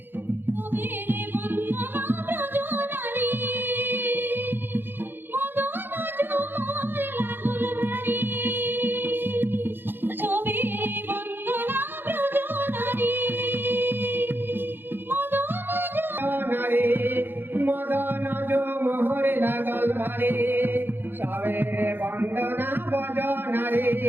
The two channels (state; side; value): late; left; 0.099 ms